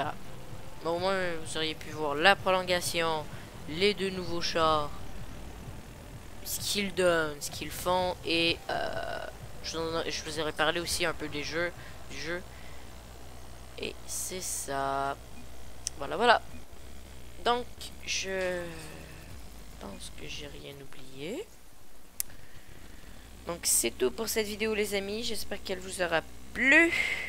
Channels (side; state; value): both; identical; correlation 1.00